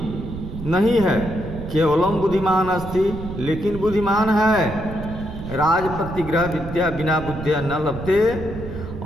नहीं है, केवलम बुद्धिमान अस्ति, लेकिन बुद्धिमान है। राज प्रतिग्रह विद्या बिना बुद्धिया न लभते।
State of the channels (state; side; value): noise; right; rumble, 9 dB below the sound